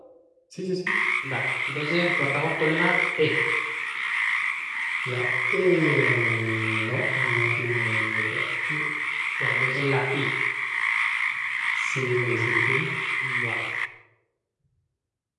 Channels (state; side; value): identical; both; correlation 1.00